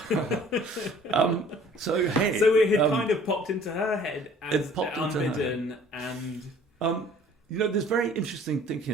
So it had kind of popped into her head as unbidden, and there's very interesting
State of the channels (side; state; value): both; normal; correlation 0.53